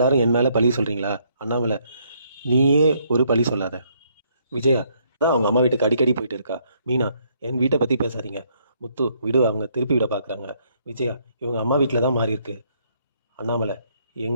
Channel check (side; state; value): both; inverted; correlation -0.69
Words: என் மேலே பழி சொல்கிறீங்களா? அண்ணாமலை, நீயே ஒரு பழி சொல்லாத. விஜயா, தான் அவங்க அம்மா வீட்டுக்கு அடிக்கடி போயிட்டு இருக்கா. மீனா, என் வீட்டை பற்றி பேசாதீங்க. முத்து, விடு, அவங்க திருப்பி விட பார்க்குறாங்க. விஜயா, இவங்க அம்மா வீட்டில் தான் மாறி இருக்கு. அண்ணாமலை,